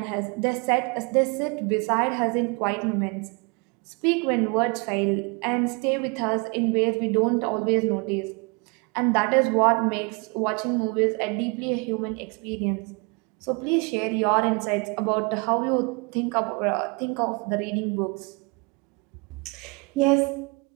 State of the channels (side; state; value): left; quieter; 30.4 dB